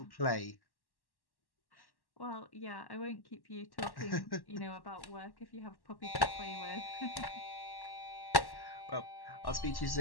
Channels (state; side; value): late; right; 1.1 ms